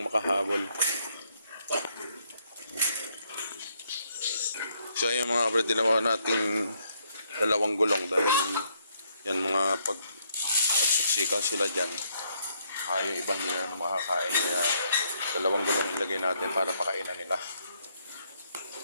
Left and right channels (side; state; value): both; inverted; correlation -0.72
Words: makahabol. So ayan mga kabrad, dinawa nating 2 gulong dahil yan mga pagsiksikan sila dyan. Yung ibang hindi na makakain. Kaya 2 gulong ilagay natin para pakainan nila.